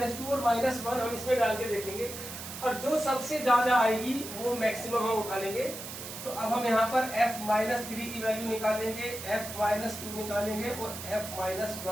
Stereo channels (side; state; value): right; noise; hiss, 10 dB below the sound